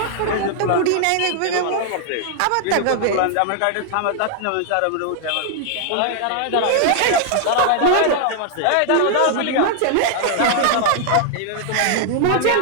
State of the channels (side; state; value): both; different; correlation 0.00